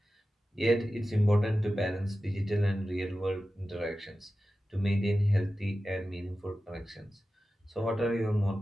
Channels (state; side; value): normal; both; correlation 0.94